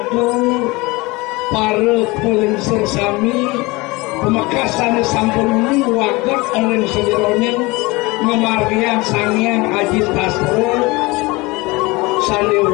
para pelensir sami, pemekasan sampun ini wagat ring sedironing, memargian sangian ajit tasro.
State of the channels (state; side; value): quieter; right; 23.4 dB